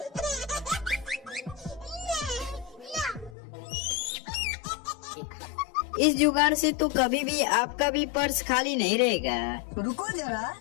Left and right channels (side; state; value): right; drops out; at 3.4 s